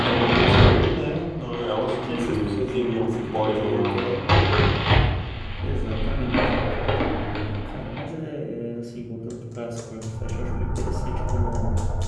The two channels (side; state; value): both; identical; correlation 1.00